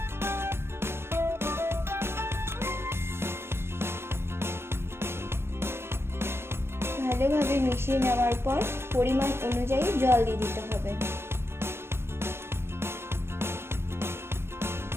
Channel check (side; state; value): left; late; 0.12 ms